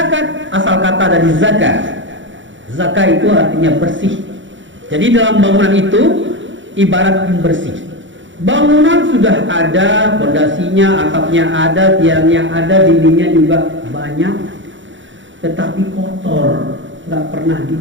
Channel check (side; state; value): left; late; 0.55 ms